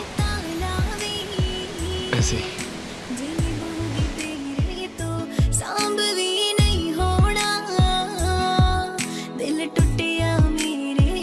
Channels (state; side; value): identical; both; correlation 1.00